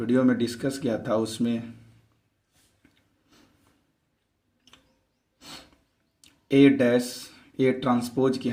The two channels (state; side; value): identical; both; correlation 1.00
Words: में डिस्कस किया था उसमें ए ट्रांसपोज की